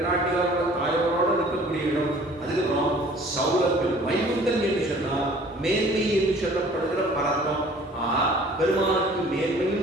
தாயோட இருக்கக்கூடிய இடம். அதுக்கப்புறம் சௌரபியம். வைகுந்தன் என்று சொன்னால் மேன்மை என்று சொல்லப்படுகிற பரத்தம். பெருமானுக்கு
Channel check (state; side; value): normal; both; correlation 0.51